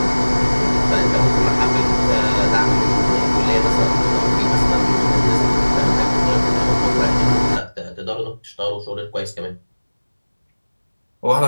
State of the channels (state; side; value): inverted; both; correlation -1.00